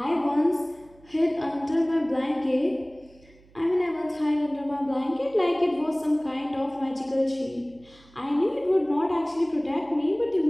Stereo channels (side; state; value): right; noise; hum, 27 dB below the sound